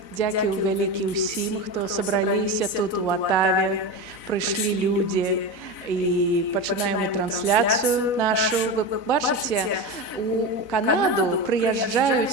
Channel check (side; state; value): right; late; 4.0 ms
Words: Дзякую вялікі ўсім, хто сабраліся тут у Атаве, прыйшлі людзі і пачынаем мы трансляцыю нашу. Вы бачыце, у Канаду